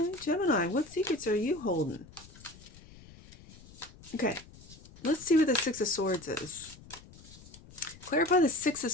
Gemini, what secrets are you holding? Okay, let's see what the Six of Swords is. Clarify the Six of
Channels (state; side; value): noise; left; rumble, 20 dB below the sound